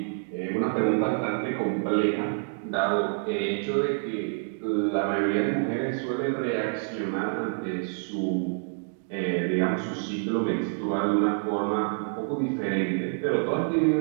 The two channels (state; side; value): silent; left; 60 dB below the other